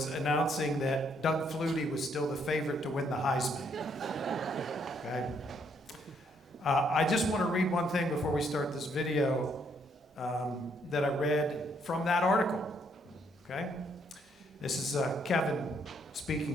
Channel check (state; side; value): normal; both; correlation 0.71